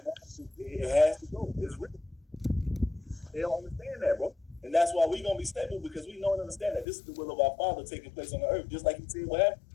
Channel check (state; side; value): drops out; right; at 6.9 s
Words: it has to go. It's written. They don't understand that, bro. And that's why we're going to be stable, because we know and understand that this is the will of our Father taking place on the earth. Just like he said what happened,